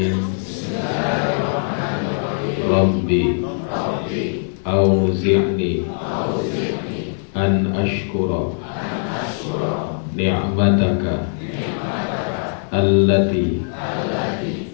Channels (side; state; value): right; silent; 59 dB below the other